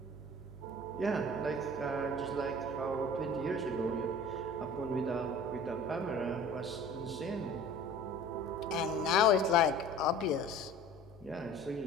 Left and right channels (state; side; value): noise; left; hum, 21 dB below the sound